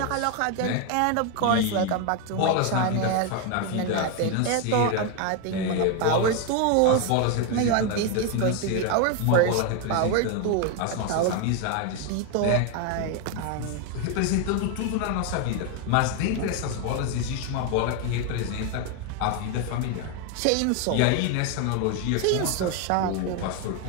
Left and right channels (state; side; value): different; both; correlation 0.01